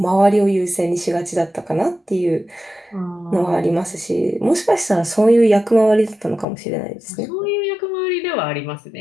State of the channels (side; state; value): right; drops out; at 6.5 s